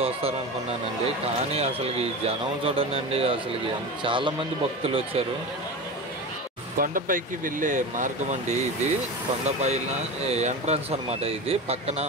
వస్తారనుకున్నానండి. కానీ అసలుకి జనం చూడండి. అసలుకి చాలా మంది భక్తులు వచ్చారు. కొండపైకి వెళ్ళే మార్గం అండి ఇది. కొండపైన ఎంట్రన్స్ అనమాట ఇది. పక్కన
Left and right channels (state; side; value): normal; both; correlation 0.26